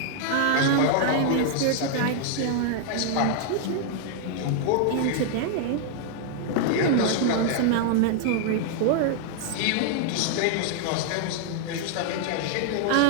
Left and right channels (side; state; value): both; different; correlation -0.01